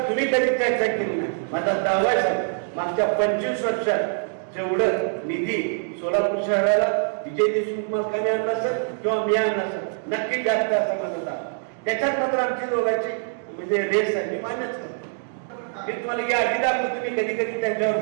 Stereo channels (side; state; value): left; silent; digital silence